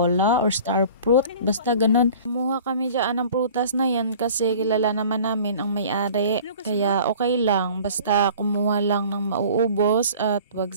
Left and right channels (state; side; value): inverted; both; correlation -0.46